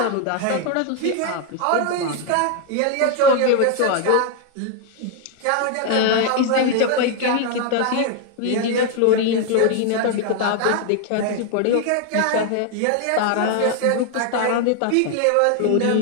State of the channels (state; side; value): different; both; correlation 0.01